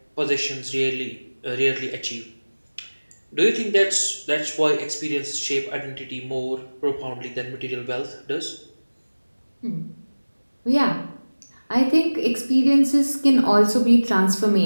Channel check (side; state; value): both; inverted; correlation -1.00